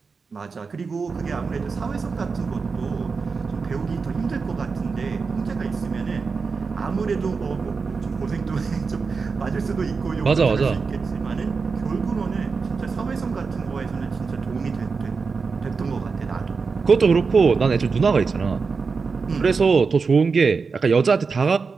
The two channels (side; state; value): left; quieter; 4.9 dB